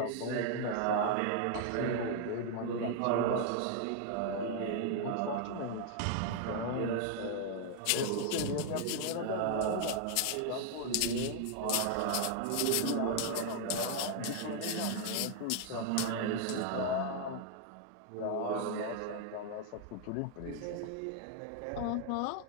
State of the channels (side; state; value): both; different; correlation 0.00